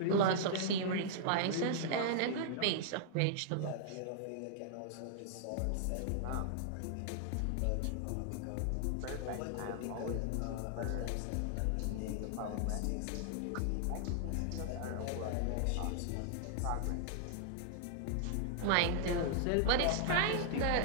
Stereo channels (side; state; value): both; different; correlation -0.01